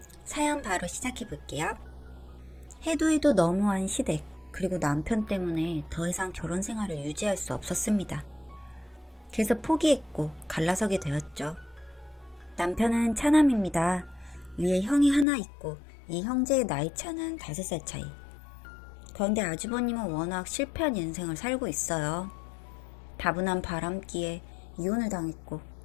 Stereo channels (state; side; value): drops out; right; at 15.2 s